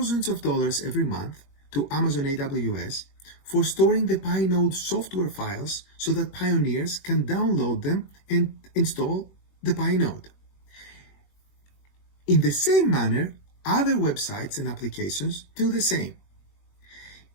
of dollars every month to Amazon AWS for storing the Pi node software files so that pioneers can download them and install the Pi node. In the same manner, other websites and applications do the same.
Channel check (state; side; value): late; right; 21 ms